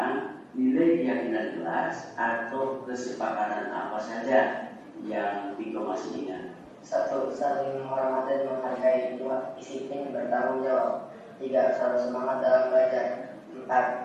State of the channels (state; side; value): identical; both; correlation 1.00